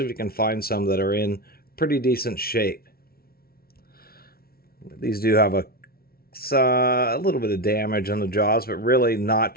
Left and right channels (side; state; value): right; late; 0.44 ms